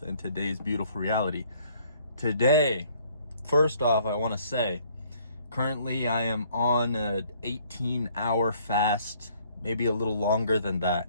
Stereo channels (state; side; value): inverted; both; correlation -0.62